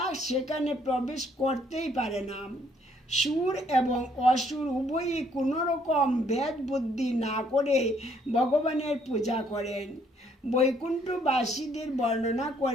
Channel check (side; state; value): both; normal; correlation 0.66